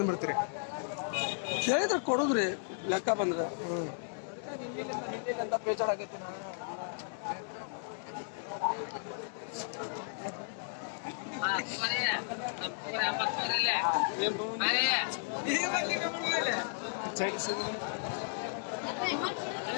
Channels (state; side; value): silent; right; digital silence